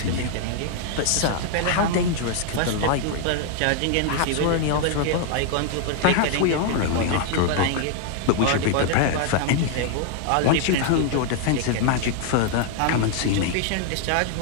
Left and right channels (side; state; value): both; different; correlation 0.00